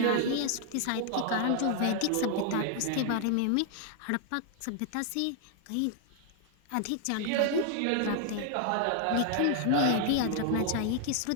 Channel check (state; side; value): different; both; correlation 0.00